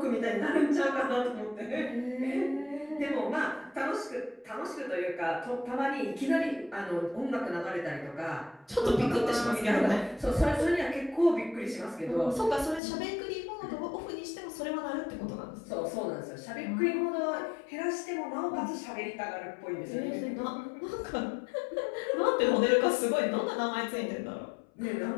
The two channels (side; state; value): right; drops out; at 12.8 s